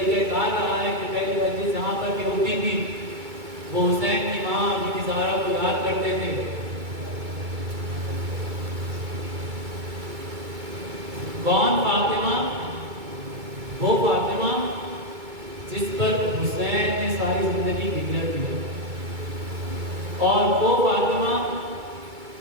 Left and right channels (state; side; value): late; left; 2.3 ms